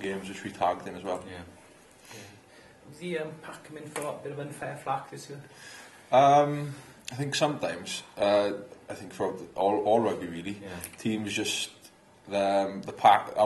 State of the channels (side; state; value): both; identical; correlation 1.00